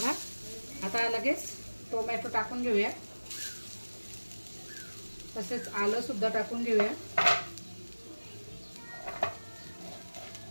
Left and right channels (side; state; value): both; inverted; correlation -1.00